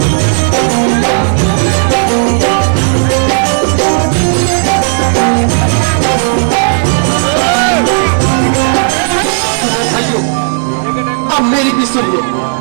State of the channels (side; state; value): left; silent; digital silence